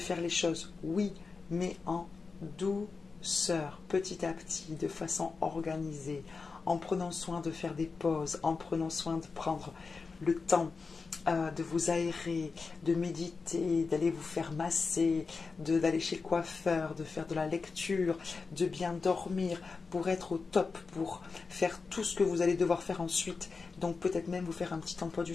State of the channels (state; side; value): quieter; right; 4.5 dB